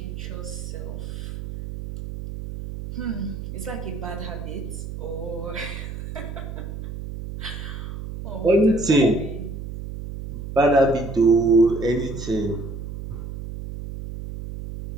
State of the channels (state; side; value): noise; right; hum, 8 dB below the sound